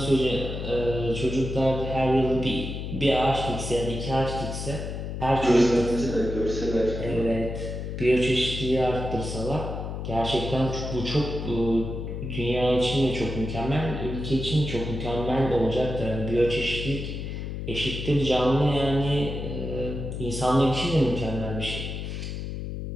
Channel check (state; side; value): noise; left; hum, 6 dB below the sound